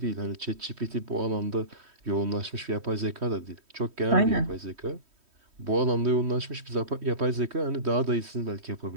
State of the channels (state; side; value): late; left; 3.1 ms